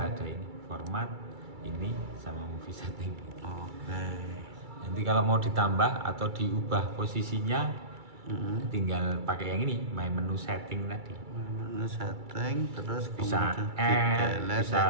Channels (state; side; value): late; left; 2.3 ms